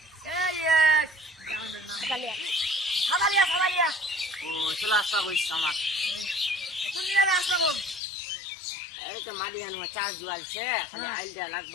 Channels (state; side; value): drops out; right; at 8.0 s